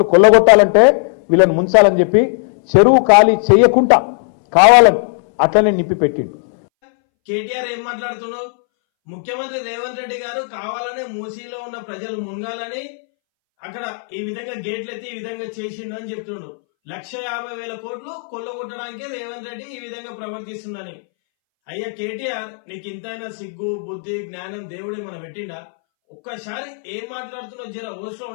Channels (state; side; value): silent; right; 65 dB below the other